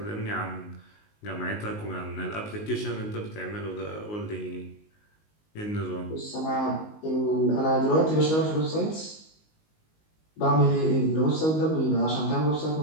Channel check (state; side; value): late; right; 19 ms